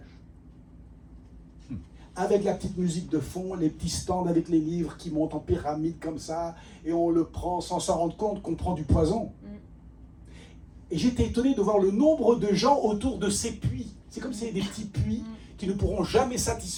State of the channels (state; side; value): identical; both; correlation 1.00